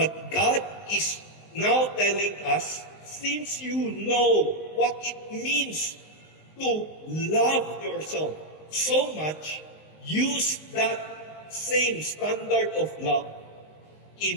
God is now telling us, since you know what it means to love yourself so much, use that same standard of love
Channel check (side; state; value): right; late; 19 ms